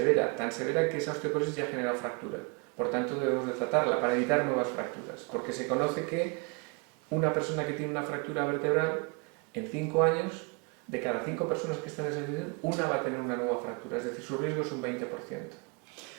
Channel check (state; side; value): quieter; left; 31.8 dB